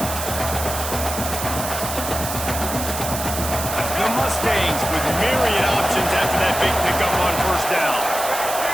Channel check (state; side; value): noise; right; hiss, 6 dB below the sound